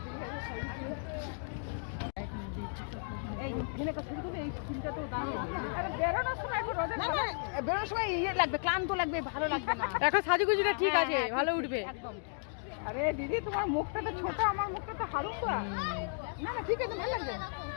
বেরোনোর সময় ইয়ে লাগবে, ক্লান্ত লাগবে, ভালো লাগবে না। এখন সাজুগুজুটা ঠিক আছে, ভালো উঠবে। একদম। আরে দিদি, তোমার মুখটা তো ছোট, আমার মুখটা তো হালুকা। না না ঠিক আছে, ভালো লাগবে।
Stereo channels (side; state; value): right; silent; digital silence